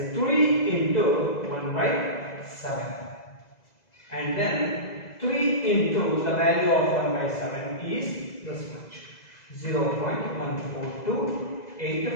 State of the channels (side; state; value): right; late; 2.0 ms